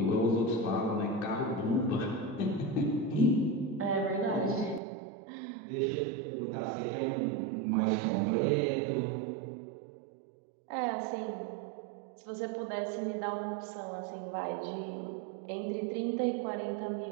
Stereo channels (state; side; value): drops out; left; at 4.8 s